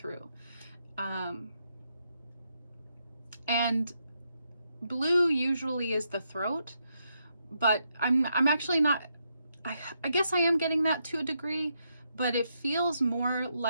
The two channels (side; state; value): both; inverted; correlation -0.80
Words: And blue usually is the throat, but I'm actually not, I guess I am getting that to a degree, but it feels more